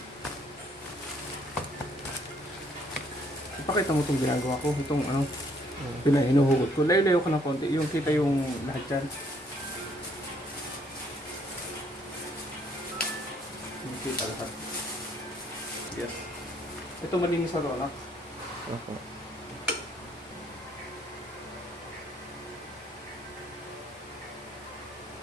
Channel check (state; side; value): normal; both; correlation 0.66